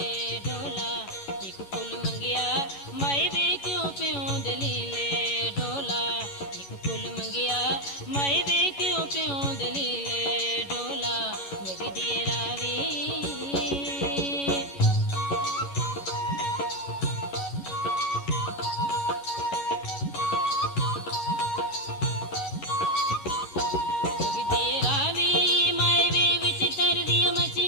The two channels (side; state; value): right; late; 11 ms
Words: ढोला एक फुल मंगिया माई वे क्यों प्यों दलीले ढोला एक फुल मंगिया माई वे क्यों प्यों दलीले ढोला वगदी रावी